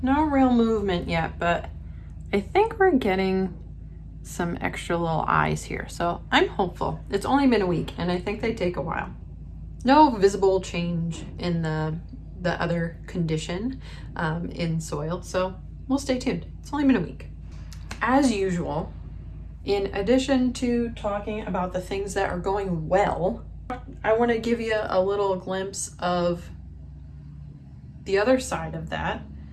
real movement yet, but I think we're getting some extra little eyes here, so I'm hopeful. It's only been a week, and I think they take a while. no visible change in the other condition in soil. So we'll stay tuned. It's only been a week. As usual, in addition to talking about the things that are going well, I want to give you a little glimpse of the other side of that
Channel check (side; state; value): both; identical; correlation 1.00